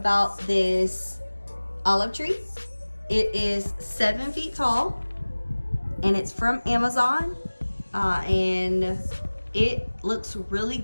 this olive tree. It is 7 feet tall and it's from Amazon. And it looks really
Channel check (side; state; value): both; inverted; correlation -1.00